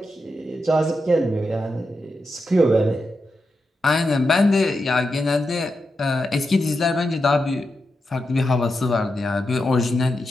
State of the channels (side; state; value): both; normal; correlation 0.87